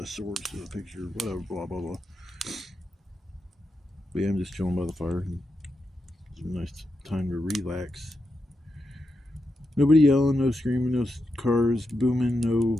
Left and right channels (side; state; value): both; normal; correlation 0.86